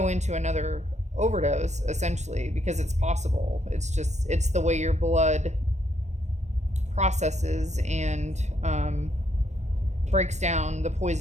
into another overdose, essentially, because it's possible. It's the way your blood processes and breaks down the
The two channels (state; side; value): late; left; 0.34 ms